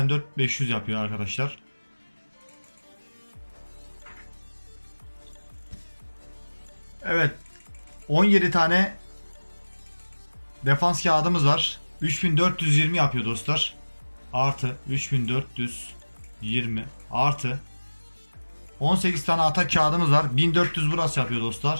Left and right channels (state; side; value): inverted; both; correlation -1.00